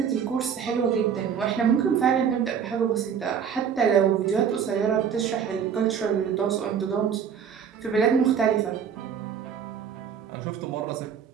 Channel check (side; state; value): left; quieter; 7.5 dB